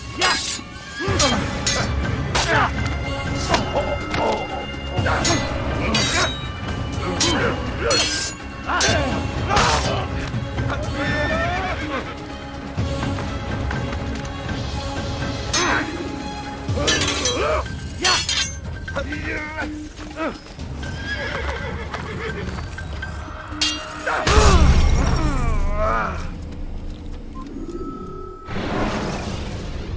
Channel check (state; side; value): identical; both; correlation 1.00